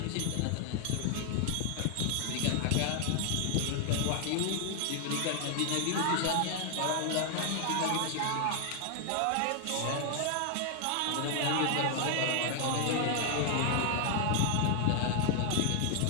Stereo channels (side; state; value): both; different; correlation 0.00